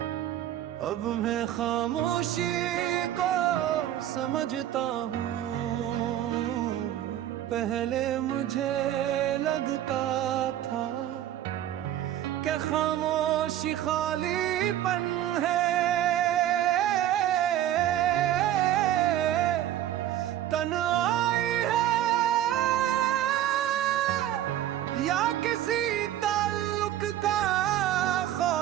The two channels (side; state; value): left; quieter; 12.2 dB